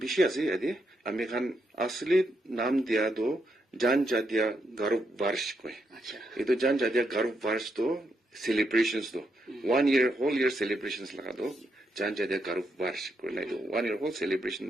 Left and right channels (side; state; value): both; normal; correlation 0.80